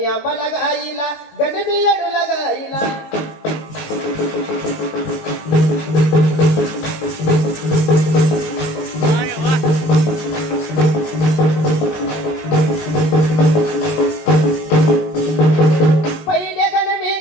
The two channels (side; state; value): right; late; 19 ms